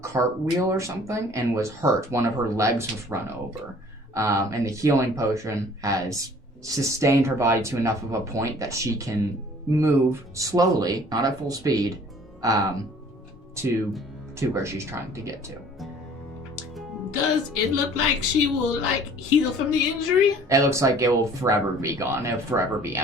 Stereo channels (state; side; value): normal; both; correlation 0.51